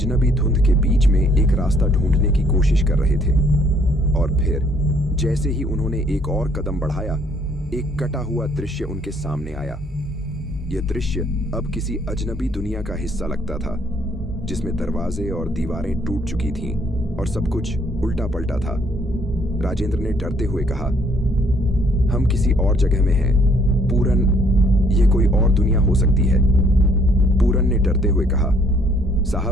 धुंध के बीच में एक रास्ता ढूंढने की कोशिश कर रहे थे। और फिर जैसे ही उन्होंने एक और कदम बढ़ाया, एक कटा हुआ दृश्य उनके सामने आया। यह दृश्य अब किसी अजनबी दुनिया का हिस्सा लगता था, जिसमें दरवाजे और दीवारें टूट चुकी थीं और सब कुछ उल्टा पलटा था। राजेंद्र ने डरते हुए कहा, हम किसी और जगह में हैं। पूरन, यह कोई और दुनिया हो सकती है। पूरन ने डरते हुए कहा,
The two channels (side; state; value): both; normal; correlation 0.64